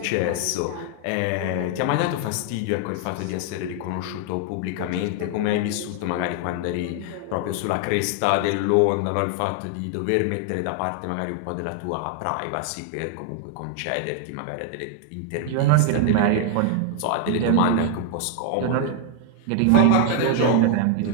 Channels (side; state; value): both; different; correlation 0.00